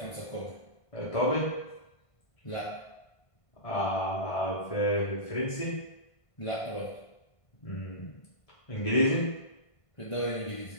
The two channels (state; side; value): late; right; 1.5 ms